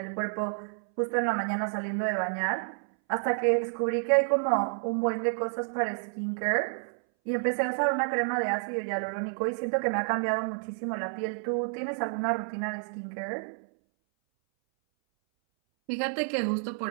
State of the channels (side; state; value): left; silent; 58 dB below the other